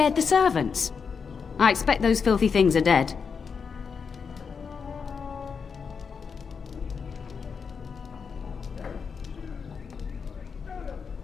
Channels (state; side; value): quieter; right; 5.9 dB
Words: the servants. I expect those filthy things are dead.